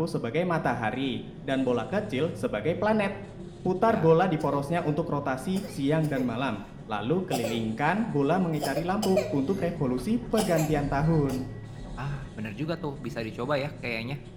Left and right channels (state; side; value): identical; both; correlation 1.00